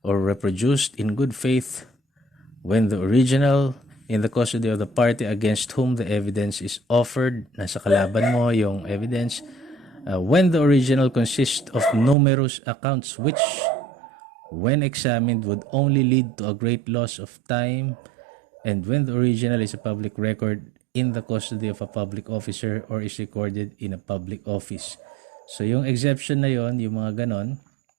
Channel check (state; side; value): drops out; left; at 12.2 s